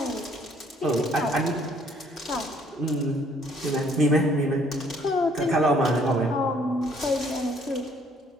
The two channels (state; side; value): normal; both; correlation 0.62